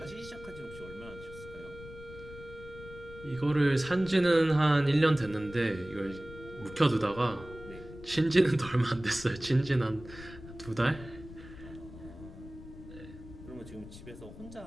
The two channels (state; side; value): noise; left; rumble, 15 dB below the sound